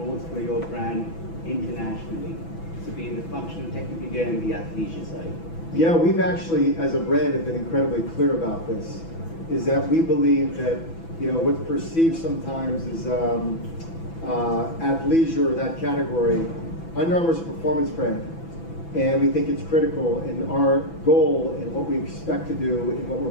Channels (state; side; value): late; right; 6.0 ms